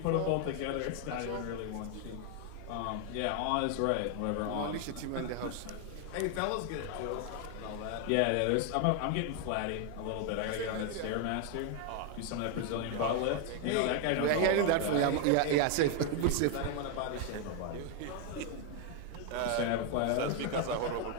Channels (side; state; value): both; different; correlation 0.01